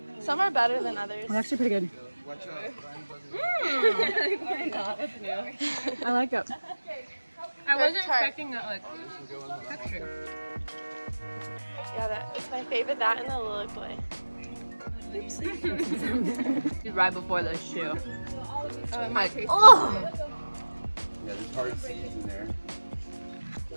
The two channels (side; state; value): both; inverted; correlation -1.00